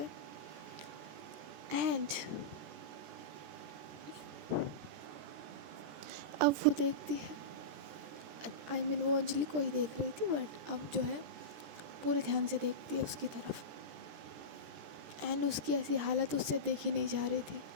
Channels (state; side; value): late; left; 14 ms